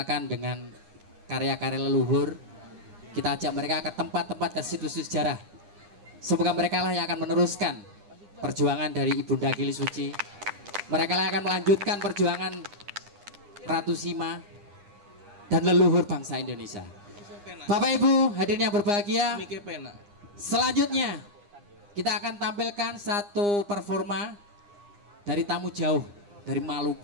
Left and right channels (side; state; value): left; late; 9.8 ms